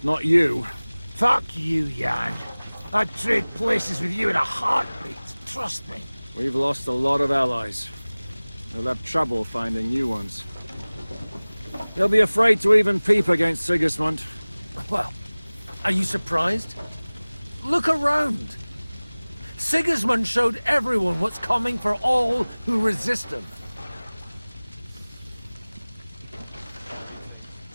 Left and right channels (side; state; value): both; inverted; correlation -1.00